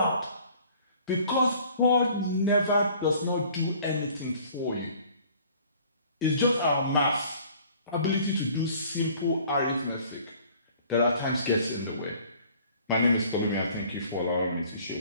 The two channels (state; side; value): inverted; both; correlation -0.53